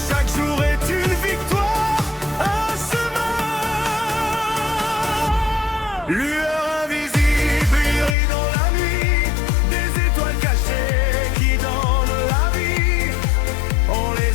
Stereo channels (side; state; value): right; drops out; at 8.2 s